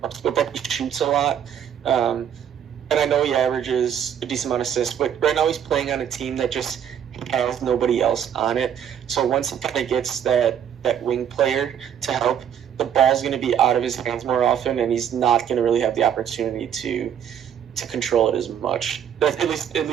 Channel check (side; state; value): left; quieter; 9.0 dB